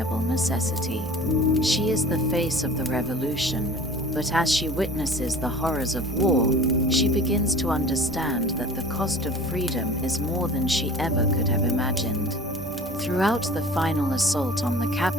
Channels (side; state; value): both; normal; correlation 0.43